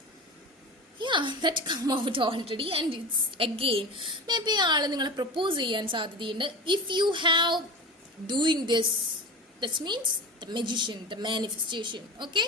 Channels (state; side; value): normal; both; correlation 0.31